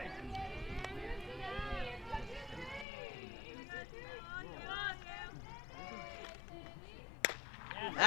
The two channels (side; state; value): right; drops out; at 2.9 s